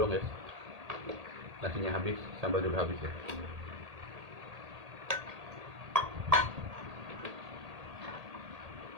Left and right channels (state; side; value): late; left; 1.8 ms